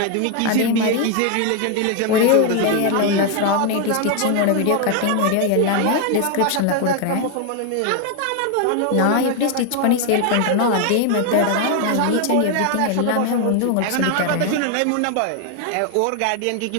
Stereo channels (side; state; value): both; different; correlation 0.01